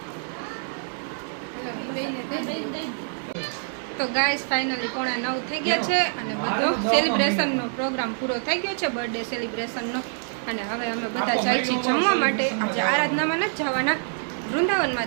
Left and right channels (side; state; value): left; silent; digital silence